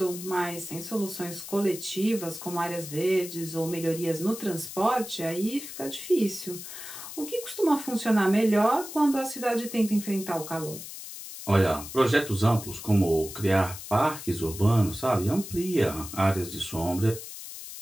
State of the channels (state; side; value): noise; left; hiss, 11 dB below the sound